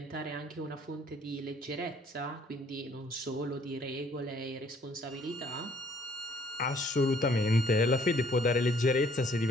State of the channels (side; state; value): both; normal; correlation 0.61